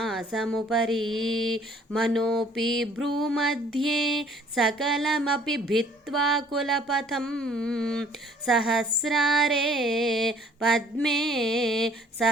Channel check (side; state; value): both; normal; correlation 0.57